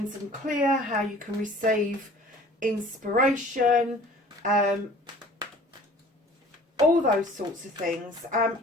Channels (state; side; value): normal; both; correlation 0.48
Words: and clear, how you can receive inspiration, all those sorts of things.